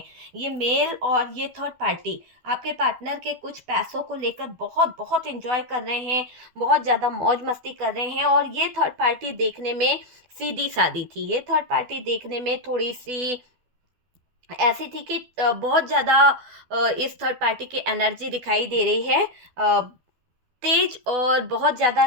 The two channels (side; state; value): left; late; 12 ms